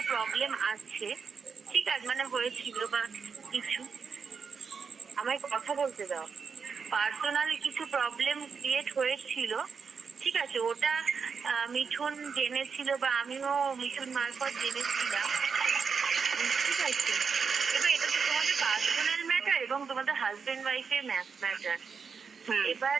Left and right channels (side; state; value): left; quieter; 5.8 dB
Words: প্রবলেম আছে, ঠিক আছে, মানে হয়েছিল বা কিছু, আমায় কথা বলতে দাও। পার্সোনাল কিছু প্রবলেম ক্রিয়েট হয়েছিল, ঠিক আছে, ওটা মিঠুন জেনেছিল বা আমিও মিঠুন মারফত জেনেছিলাম, ঠিক আছে। এবার এটা তো তোমাদের পার্সোনাল ম্যাটার এবং তোমাদের হাজবেন্ড ওয়াইফের ম্যাটার। এবার